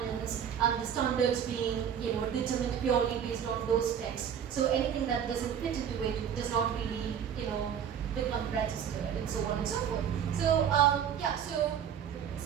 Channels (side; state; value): left; quieter; 8.5 dB